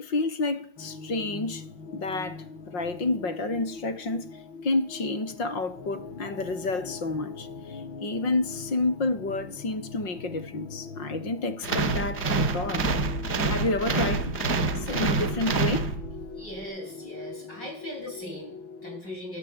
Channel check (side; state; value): right; late; 5.6 ms